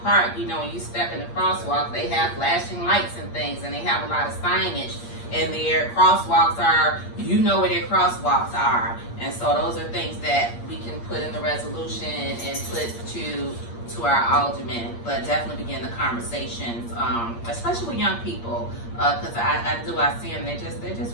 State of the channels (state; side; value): late; right; 8.6 ms